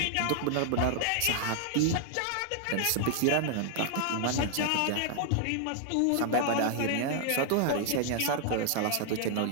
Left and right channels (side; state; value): both; different; correlation 0.00